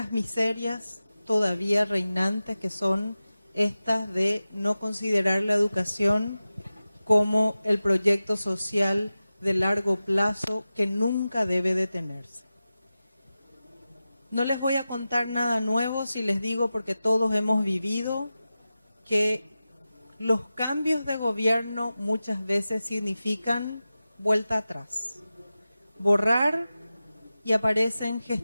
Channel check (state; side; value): inverted; both; correlation -0.94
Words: miserias todavía reinantes, que son estas de no considerar la educación como el proyecto social de largo plazo que nunca debe detenerse. No les voy a contar nada nuevo si les digo, porque todos hemos vivido, que los cambios de gobierno muchas veces significan vuelta atrás, borrar, y aparecen